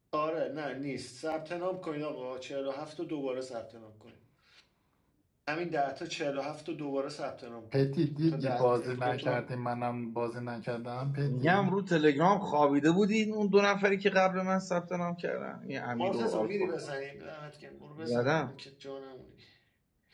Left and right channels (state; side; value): identical; both; correlation 1.00